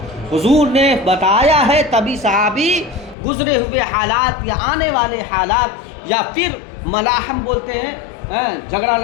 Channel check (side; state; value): right; drops out; at 3.2 s